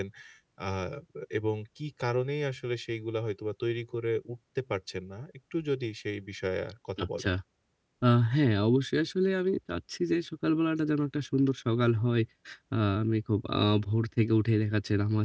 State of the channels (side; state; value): both; identical; correlation 1.00